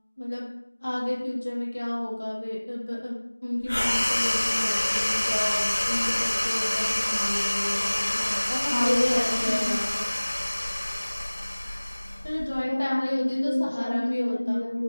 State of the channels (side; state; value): both; inverted; correlation -1.00